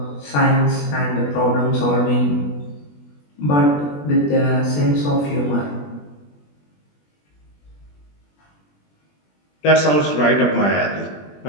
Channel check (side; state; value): right; late; 21 ms